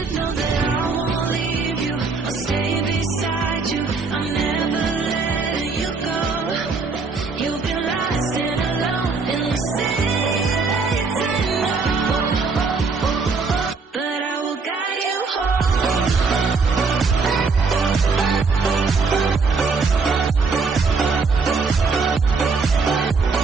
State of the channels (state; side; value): quieter; left; 4.5 dB